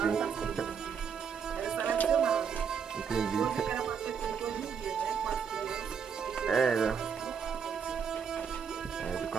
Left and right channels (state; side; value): quieter; left; 6.9 dB